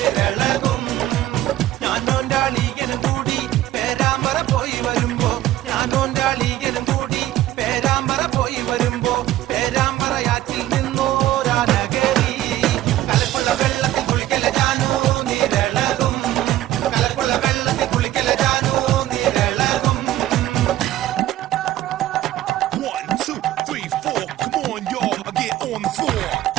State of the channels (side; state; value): left; quieter; 14.2 dB